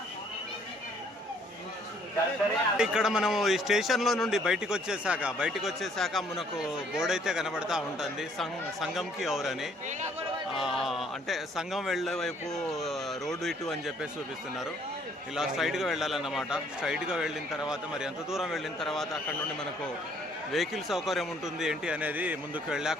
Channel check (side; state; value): both; normal; correlation 0.62